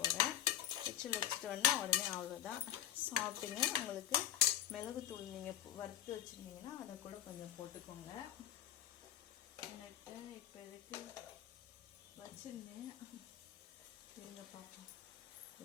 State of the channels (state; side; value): quieter; right; 11.5 dB